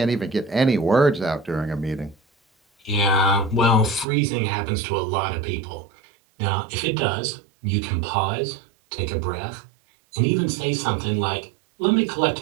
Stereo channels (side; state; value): left; drops out; at 4.0 s